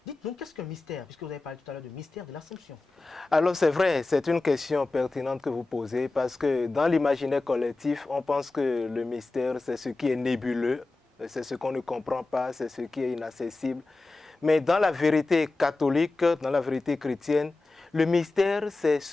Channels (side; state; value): right; quieter; 3.3 dB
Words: dites-nous, qu'est-ce qu'un mystère? Puisque vous avez parlé tout à l'heure de mystère de l'Assomption. Alors c'est vrai, c'est une question pertinente que vous posez, parce que dans l'imaginaire collectif, on pense que le mystère, c'est ce qui est nébuleux, c'est ce qu'on ne comprend pas, c'est ce qui est inaccessible. Mais dans la vérité catholique, dans la vérité chrétienne, le mystère, c'est